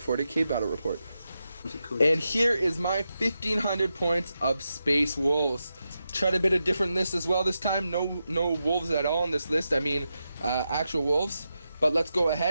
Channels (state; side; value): inverted; both; correlation -0.88